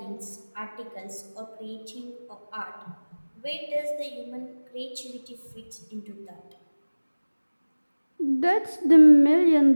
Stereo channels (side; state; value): both; inverted; correlation -1.00